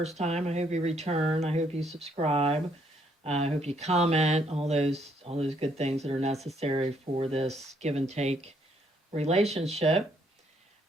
time, I hope you return. I hope you subscribe. I hope you comment. All those good things that are necessary for this give and take relationship.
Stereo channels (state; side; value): normal; both; correlation 0.70